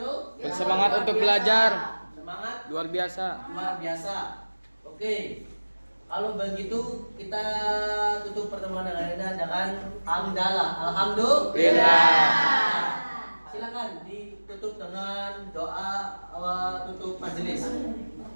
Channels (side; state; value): both; inverted; correlation -1.00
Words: Bersemangat untuk belajar. Semangat Luar biasa. luar biasa. Oke. Kalau begitu kita tutup pertemuan hari ini dengan hamdalah. Alhamdulillah. Silakan ditutup dengan doa tutup majelis.